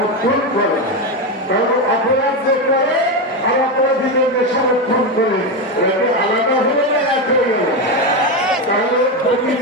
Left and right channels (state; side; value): normal; both; correlation 0.12